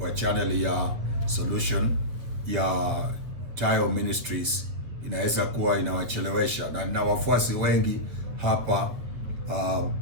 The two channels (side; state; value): left; late; 8.3 ms